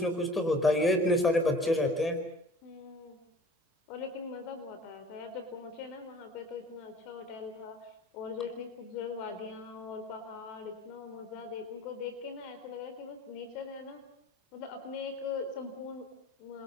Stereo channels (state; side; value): normal; both; correlation 0.47